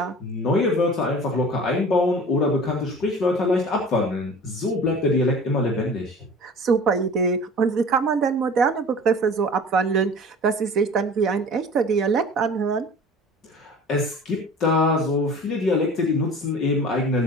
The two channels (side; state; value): both; normal; correlation 0.42